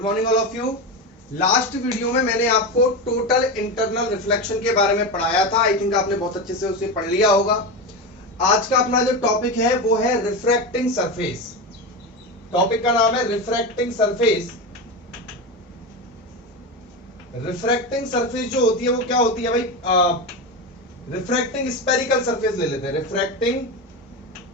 morning all of you. Last video में मैंने आपको टोटल इंटरनल रिफ्लेक्शन के बारे में पढ़ाया था। आई थिंक आपने बहुत अच्छे से उसे पढ़ लिया होगा। आज का अपना जो टॉपिक है वो है रिफ्रैक्टिंग सरफेस। टॉपिक का नाम है रिफ्रैक्टिंग सरफेस। रिफ्रैक्टिंग सरफेस जो होती है वो क्या होती है भाई? रिफ्रैक्टिंग स्पेरिकल सरफेस ले लेते हैं। Refracting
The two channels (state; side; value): normal; both; correlation 0.19